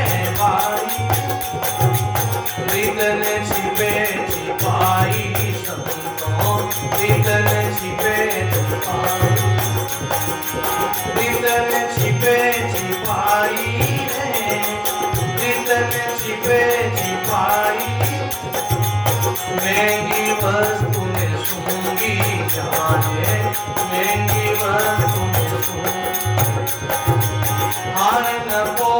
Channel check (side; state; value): both; identical; correlation 1.00